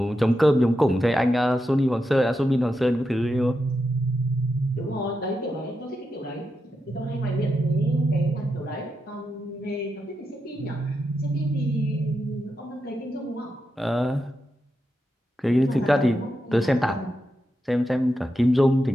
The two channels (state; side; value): normal; both; correlation 0.87